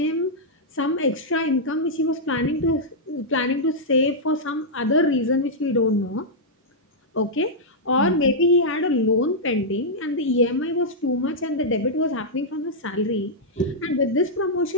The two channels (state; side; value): normal; both; correlation -0.07